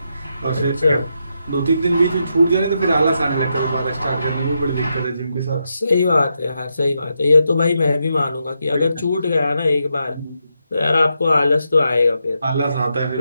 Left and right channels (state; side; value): inverted; both; correlation -0.84